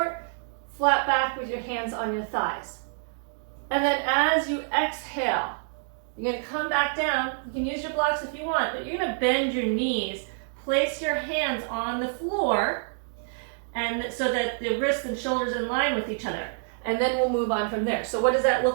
flat back with your hands on your thighs. And then as you exhale, you're going to come back down. You can use your blocks if you want, but you're going to bend your knees, place your hands on the floor, and so that the wrists and shoulders are in line with each other. And then we'll move on from there. So what does that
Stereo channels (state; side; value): silent; left; digital silence